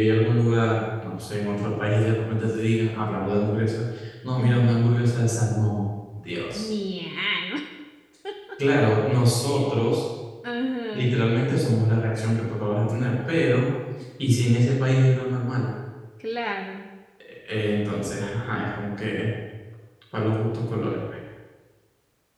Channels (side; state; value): both; identical; correlation 1.00